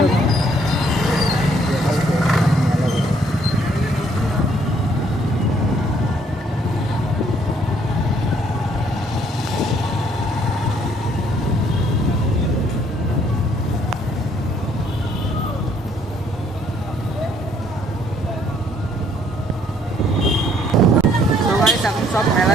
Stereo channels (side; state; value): both; normal; correlation 0.65